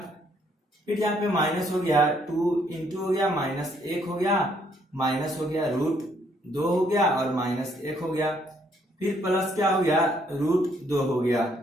फिर यहाँ पे माइनस हो गया 2 इंटू हो गया -1 हो गया, माइनस हो गया √2 हो गया और -1 हो गया, फिर प्लस क्या हो गया, √2 हो गया।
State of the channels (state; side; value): normal; both; correlation 0.69